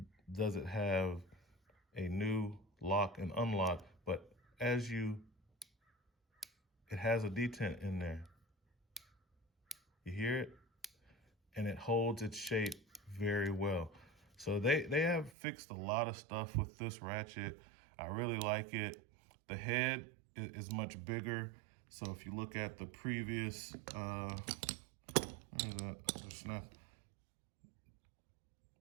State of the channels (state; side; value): drops out; left; at 15.3 s